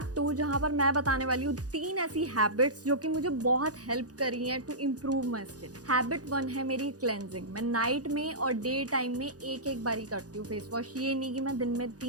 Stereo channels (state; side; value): late; left; 0.67 ms